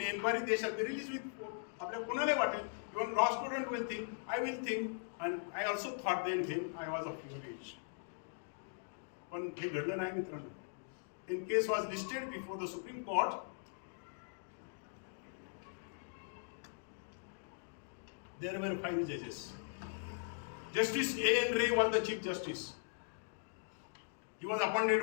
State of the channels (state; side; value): silent; right; digital silence